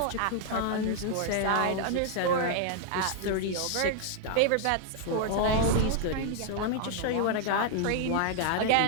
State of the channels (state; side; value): different; both; correlation 0.00